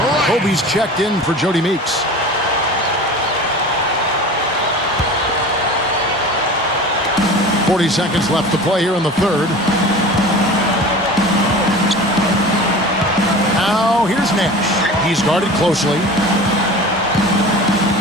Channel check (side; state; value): both; normal; correlation 0.37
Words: Kobe's checked in for Jody Meeks. .40 seconds left to play here in the third. Now here's Nash. He's guarded closely.